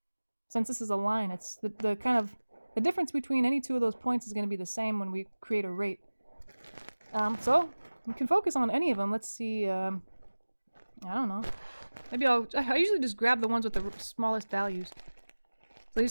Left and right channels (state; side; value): inverted; both; correlation -1.00